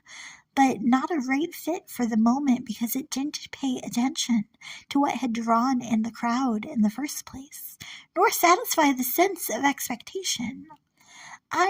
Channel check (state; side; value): identical; both; correlation 1.00